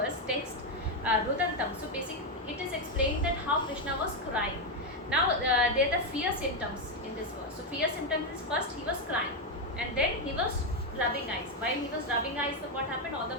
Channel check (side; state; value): both; normal; correlation 0.05